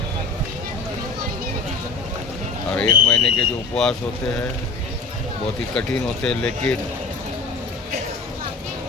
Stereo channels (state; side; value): quieter; right; 3.9 dB